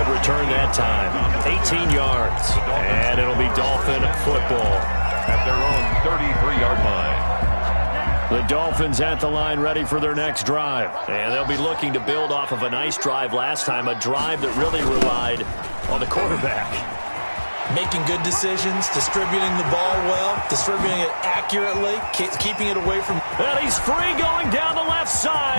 return that time. 18 yards. And it'll be Dolphin football. At their own 33-yard line. The Dolphins at the line ready for their next drive. And they'll be looking to build off of a nice drive last time. A drive that really relied on the quarterback. Making good decisions, distributing the ball well, distributing it accurately, keeping it away from... And he's free going down the left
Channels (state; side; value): inverted; both; correlation -1.00